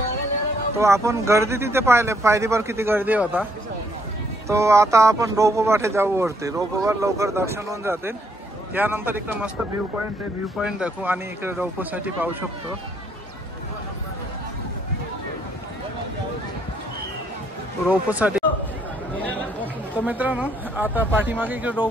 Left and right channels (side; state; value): both; normal; correlation 0.70